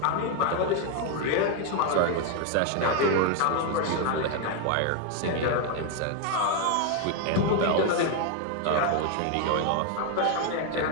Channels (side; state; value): both; different; correlation 0.01